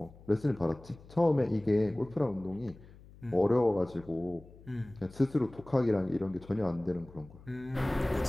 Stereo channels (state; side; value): noise; left; hum, 21 dB below the sound